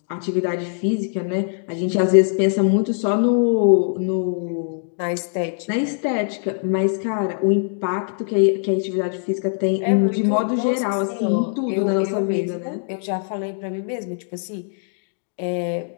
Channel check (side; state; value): right; silent; digital silence